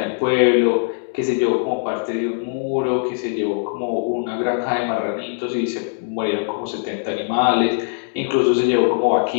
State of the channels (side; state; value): right; silent; 65 dB below the other